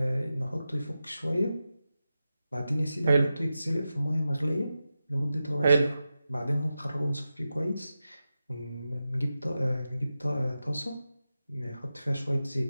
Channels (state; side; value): inverted; both; correlation -0.91